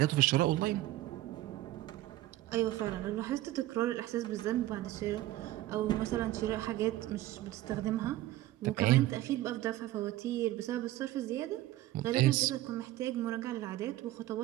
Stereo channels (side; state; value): left; quieter; 15.7 dB